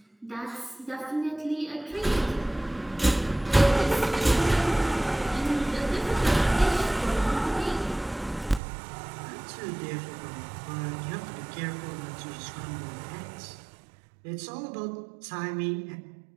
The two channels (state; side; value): drops out; left; at 8.6 s